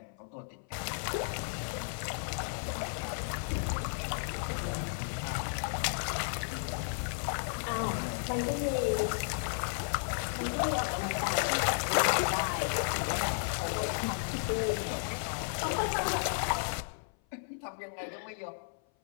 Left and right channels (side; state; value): right; silent; 55 dB below the other